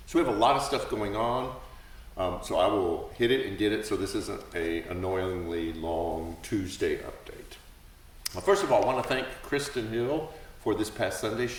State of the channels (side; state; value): both; identical; correlation 1.00